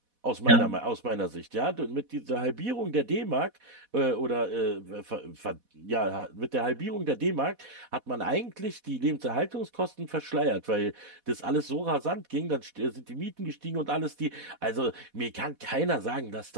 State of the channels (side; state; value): left; late; 4.1 ms